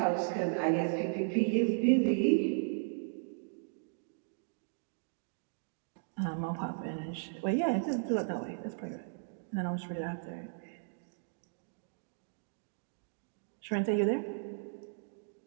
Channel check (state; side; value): silent; left; digital silence